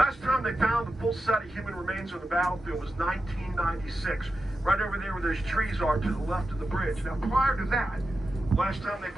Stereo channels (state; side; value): normal; both; correlation 0.90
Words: time they found the full set of human remains on the battlefield was 1996, right over there where those trees are to the left of the bridge. Now, prior to that, last time they